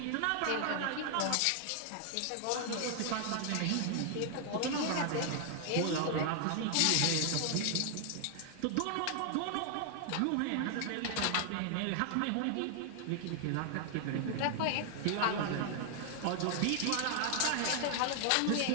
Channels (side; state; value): both; different; correlation 0.00